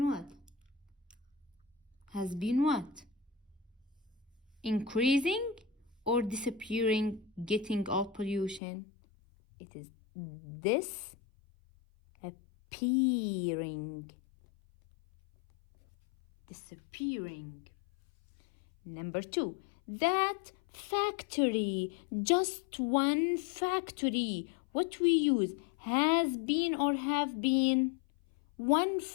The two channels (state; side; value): drops out; right; at 8.6 s